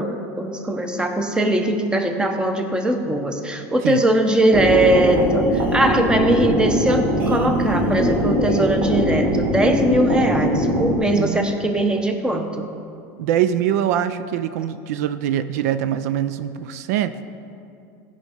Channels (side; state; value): both; normal; correlation 0.50